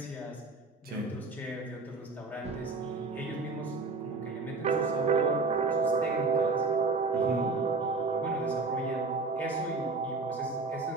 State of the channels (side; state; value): left; quieter; 3.9 dB